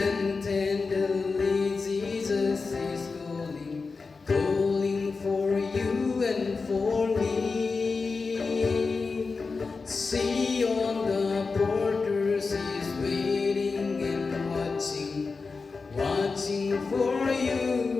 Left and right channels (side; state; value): right; quieter; 4.4 dB